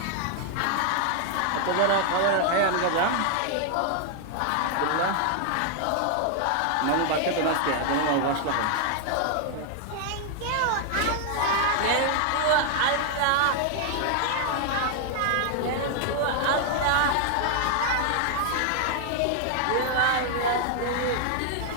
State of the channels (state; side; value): different; both; correlation 0.00